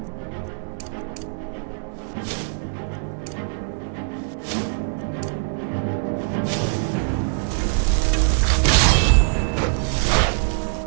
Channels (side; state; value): left; silent; digital silence